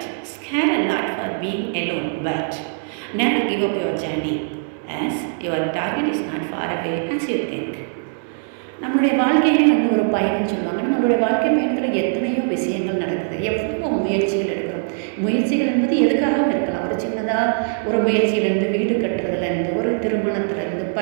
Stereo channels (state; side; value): silent; left; 62 dB below the other